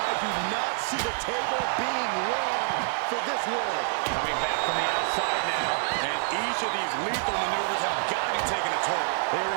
do not see the table being long for this world. Coming back from the outside now. And each of these lethal maneuvers have got to be taking a toll. There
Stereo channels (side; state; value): left; silent; digital silence